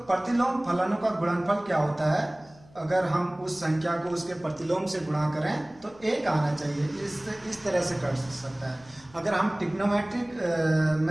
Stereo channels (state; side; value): noise; left; hum, 26 dB below the sound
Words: प्रतिलोम फलनों का गुणनफल क्या होता है, अगर हम उस संख्या को उसके प्रतिलोम से गुणा करें तो एक आना चाहिए, इस तरह से कर सकता है। अगर हम ट्रिग्नोमेट्रिक